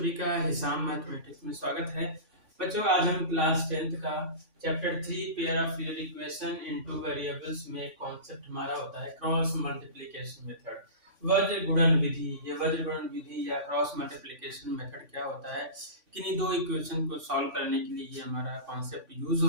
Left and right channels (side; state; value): left; late; 3.5 ms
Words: का हिसाब मैथमेटिक्स में स्वागत है। बच्चों, आज हम क्लास 10th का chapter 3 pair of real equation into variables में कॉन्सेप्ट हमारा होता है क्रॉस मल्टीप्लिकेशन मेथड, वज्र गुणन विधि। ये वज्र गुणन विधि या क्रॉस मल्टीप्लिकेशन मेथड क्या होता है, किन्हीं दो इक्वेशन को सॉल्व करने के लिए ये हमारा कॉन्सेप्ट यूज